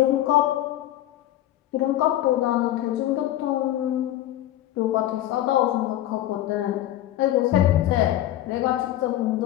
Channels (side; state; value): right; quieter; 13.6 dB